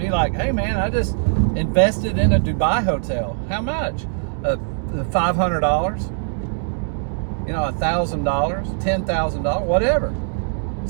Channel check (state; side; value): silent; left; 65 dB below the other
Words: like, hey man, I just invested in a Dubai hotel. How much? $500? You know, $1,000, $10,000, whatever.